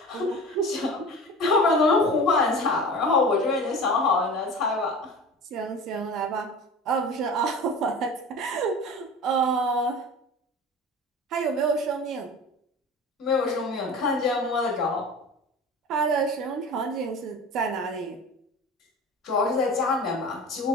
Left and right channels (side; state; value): both; normal; correlation 0.35